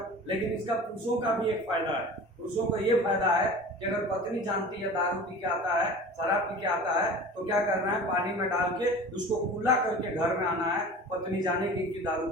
लेकिन इसका पुरुषों का भी एक फायदा है। पुरुषों का ये फायदा है कि अगर पत्नी जानती है दारू पी के आता है, शराब पी के आता है, तो क्या करना है, पानी में डाल के उसको कूला करके घर में आना है। पत्नी जाने की दारू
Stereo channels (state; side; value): normal; both; correlation 0.39